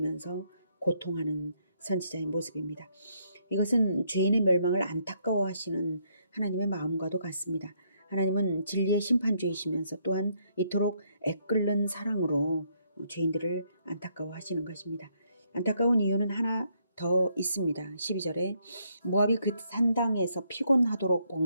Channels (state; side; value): inverted; both; correlation -0.72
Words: 고통하는 선지자의 모습입니다. 이것은 죄인의 멸망을 안타까워하시는 하나님의 마음과도 같습니다. 하나님은 진리의 심판주이시면서 또한 이토록 애끓는 사랑으로 죄인들을 안타까워하시는 것입니다. 안타까운 이유는 하나 더 있습니다. 12절에 모압이 그 산당에서 피곤하도록